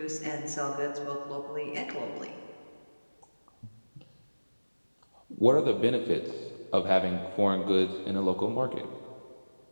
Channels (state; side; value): inverted; both; correlation -1.00